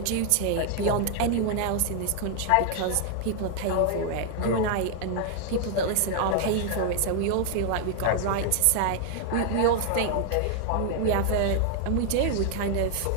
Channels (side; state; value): both; different; correlation 0.00